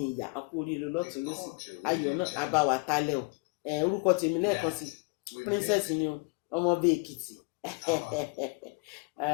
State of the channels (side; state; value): right; quieter; 30.5 dB